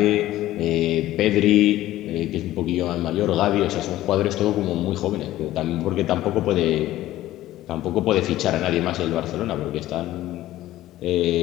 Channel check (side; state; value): right; quieter; 15.0 dB